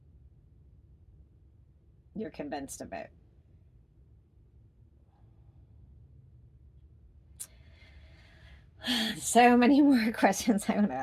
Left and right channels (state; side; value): identical; both; correlation 1.00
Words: You're convinced of it. So many more questions I want to